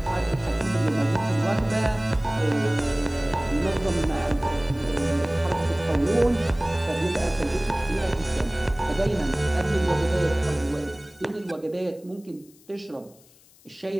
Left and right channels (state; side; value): noise; left; hiss, 27 dB below the sound